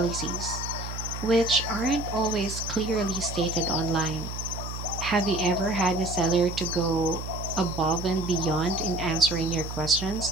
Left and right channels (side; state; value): right; noise; hum, 8 dB below the sound